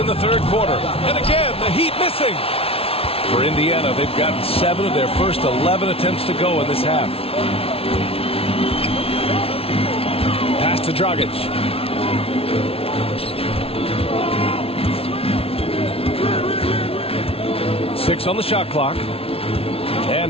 the third quarter. And again, the Heat missing. For Indiana, they've gotten 7 of their first 11 attempts to go in this half. Pass to Dragic. Six on the shot clock.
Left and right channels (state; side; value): late; right; 0.27 ms